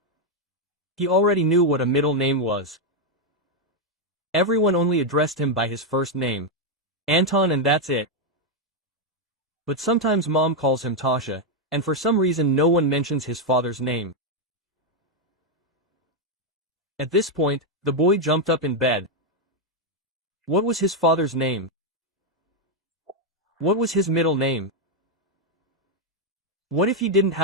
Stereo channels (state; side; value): normal; both; correlation 0.01